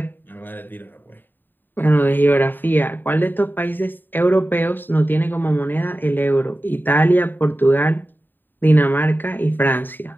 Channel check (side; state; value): right; late; 0.092 ms